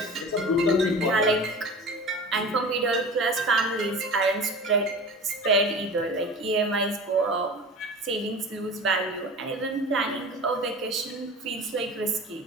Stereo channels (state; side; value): normal; both; correlation 0.36